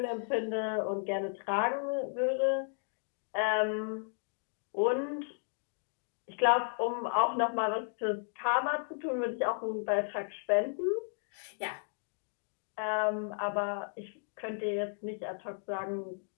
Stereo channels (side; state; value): right; silent; digital silence